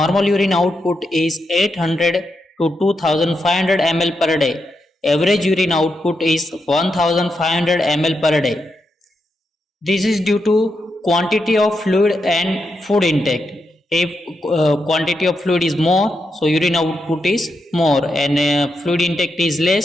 urine output is 800 to 2500 ml per day. Average urine output is 1500 ml per day. This is due to quantity of fluid and food intake. If quantity of fluid is more, so urine output is more, and fluid intake is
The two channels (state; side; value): normal; both; correlation 0.84